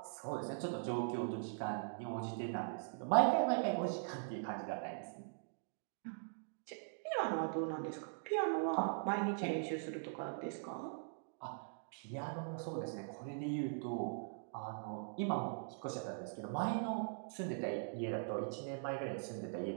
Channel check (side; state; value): left; silent; digital silence